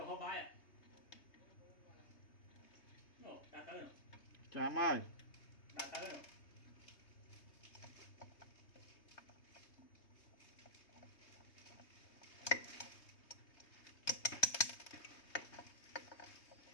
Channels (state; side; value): late; right; 3.2 ms